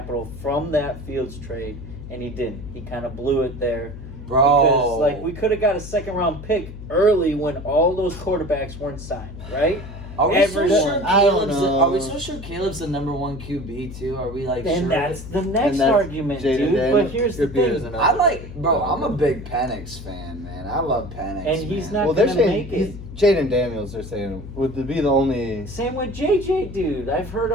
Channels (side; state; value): left; noise; hum, 12 dB below the sound